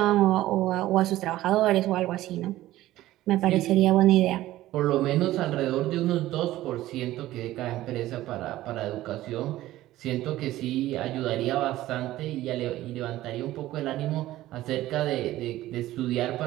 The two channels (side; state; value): left; quieter; 15.4 dB